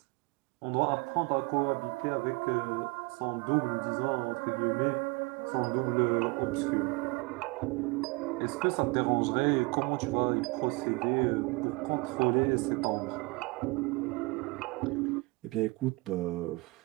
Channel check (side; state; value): left; quieter; 26.1 dB